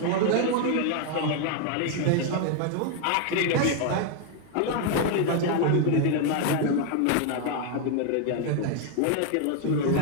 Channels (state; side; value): different; both; correlation 0.01